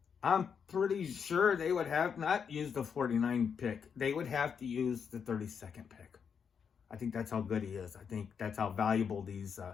I'm pretty sure they would have not used the 49 pick. They would have to use the 32nd pick. I think that's how good he is. I think that's how valuable these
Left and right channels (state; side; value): quieter; right; 6.8 dB